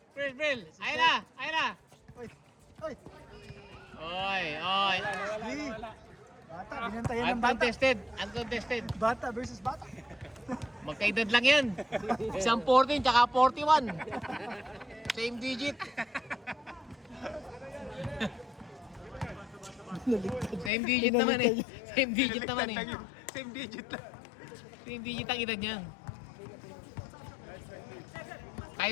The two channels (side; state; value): right; drops out; at 20.7 s